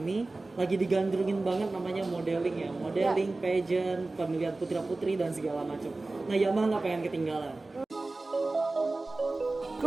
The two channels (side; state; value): left; quieter; 3.2 dB